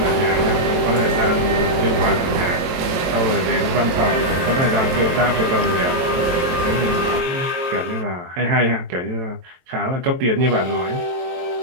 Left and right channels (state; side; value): late; left; 23 ms